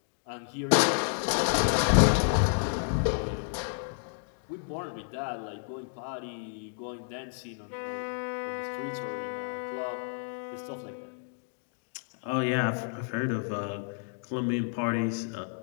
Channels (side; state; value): right; silent; digital silence